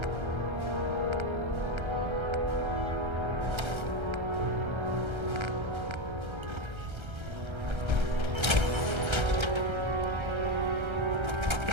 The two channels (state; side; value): late; left; 1.3 ms